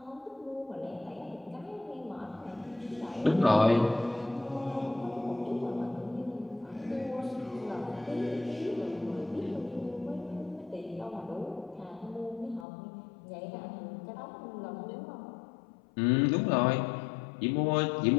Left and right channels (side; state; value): right; drops out; at 12.7 s